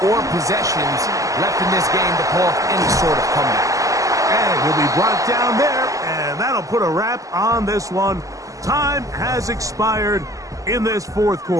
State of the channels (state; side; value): late; left; 0.16 ms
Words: or possessions left in this game to pull off any sort of comeback. And he'll be brought down there, and that'll put a wrap on this one. Time has expired in this 4th